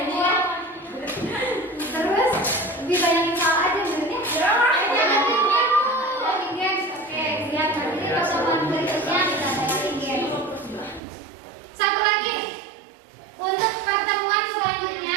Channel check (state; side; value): drops out; left; at 11.0 s